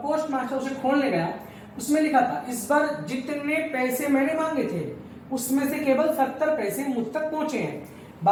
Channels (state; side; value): identical; both; correlation 1.00